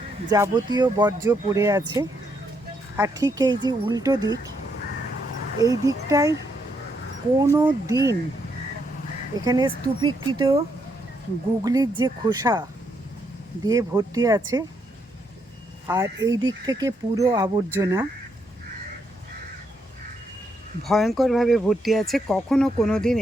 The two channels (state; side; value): normal; both; correlation 0.77